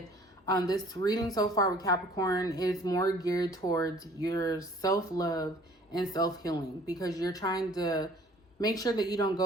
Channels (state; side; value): normal; both; correlation 0.54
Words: this reading so far with Capricorn is more geared towards your self-love and self-healing, because you're trying to make sure that you don't